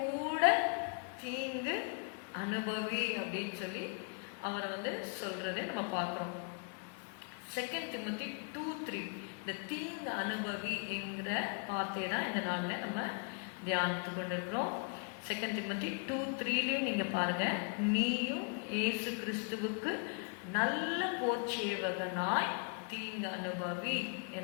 தீங்கு அனுபவி அப்படின்னு சொல்லி அவரை சொல்றதை நம்ம பார்க்குறோம். 2 Timothy 2:3 இந்த தீங்கு அனுபவி என்கிற வார்த்தையை தான் இந்த நாளில் நம்ம தியானித்து கொண்டிருக்கிறோம். 2 Timothy 2:3 நீங்க பாருங்க, நீயும் இயேசு கிறிஸ்துவுக்கு நல்ல போர்ச்சேவகனாய் தீங்கு அனுபவி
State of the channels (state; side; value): quieter; right; 39.8 dB